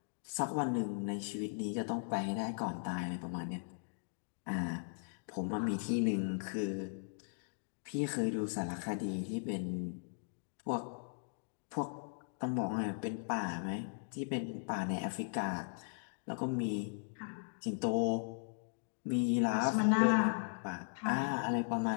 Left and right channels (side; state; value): right; silent; digital silence